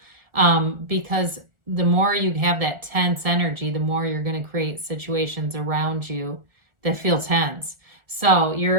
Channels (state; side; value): late; left; 1.4 ms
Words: Because the more you have that tense energy, the more you're going to create situations around you that feel tense. So